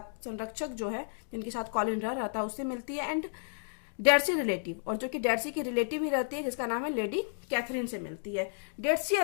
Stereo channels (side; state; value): right; silent; digital silence